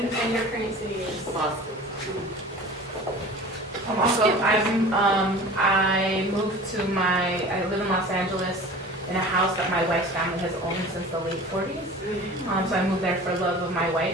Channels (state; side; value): normal; both; correlation 0.40